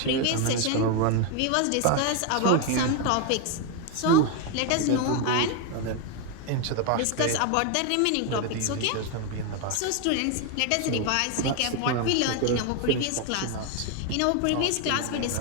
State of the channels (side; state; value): both; different; correlation 0.01